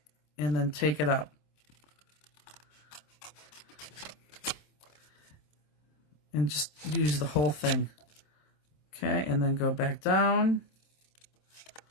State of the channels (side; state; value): right; late; 26 ms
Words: and then take it up. And just use the whole thing. Okay, and then go back down.